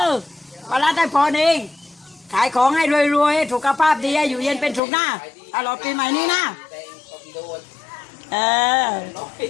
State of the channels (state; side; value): drops out; right; at 4.8 s